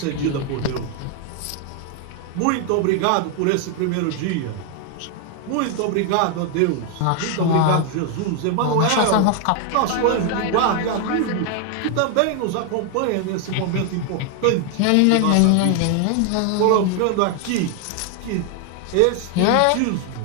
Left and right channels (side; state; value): both; different; correlation 0.00